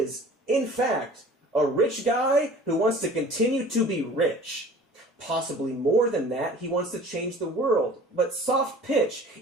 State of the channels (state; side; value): normal; both; correlation 0.45